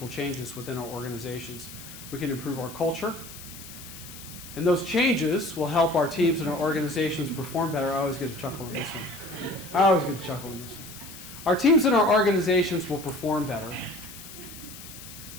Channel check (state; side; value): noise; left; hiss, 15 dB below the sound